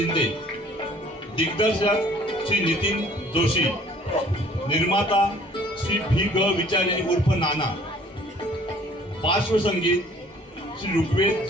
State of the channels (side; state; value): both; normal; correlation 0.55